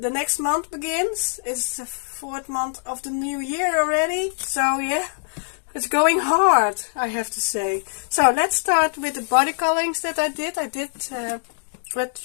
next month begins. It's the 4th month of the new year already. So yeah, it's going hard, I have to say. So let's start with the body colorings that I did. I did with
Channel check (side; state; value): right; silent; 63 dB below the other